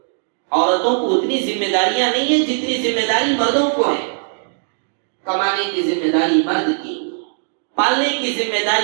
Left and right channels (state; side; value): silent; left; digital silence